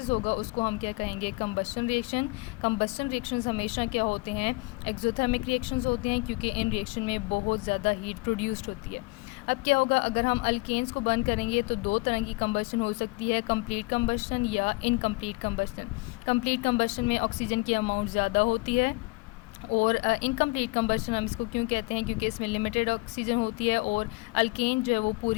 होगा उसको हम क्या कहेंगे, कंबस्शन रिएक्शन। कंबस्शन रिएक्शंस हमेशा क्या होते हैं, एक्सोथर्मिक रिएक्शंस होते हैं क्योंकि इन रिएक्शन में बहुत ज़्यादा हीट प्रोड्यूस्ड होती है। अब क्या होगा, अगर हम अल्केन्स को बर्न करेंगे तो 2 तरह की कंबस्शन हो सकती है, कंप्लीट कंबस्शन या इनकम्प्लीट कंबस्शन। कंप्लीट कंबस्शन में ऑक्सीजन की अमाउंट ज़्यादा होती है और इनकम्प्लीट कंबस्शन हम इसको क्यों कहते हैं, क्योंकि इसमें लिमिटेड ऑक्सीजन होती है और अल्केन जो है वो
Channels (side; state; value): right; quieter; 25.3 dB